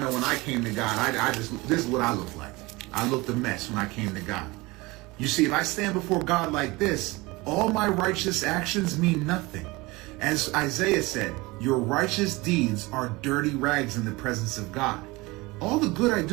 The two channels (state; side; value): quieter; left; 22.7 dB